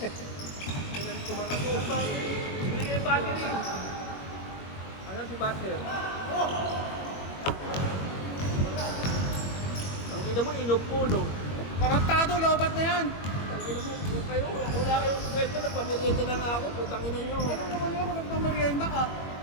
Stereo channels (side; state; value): right; late; 21 ms